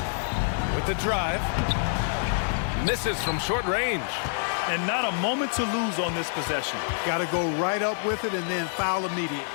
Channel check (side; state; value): right; silent; 60 dB below the other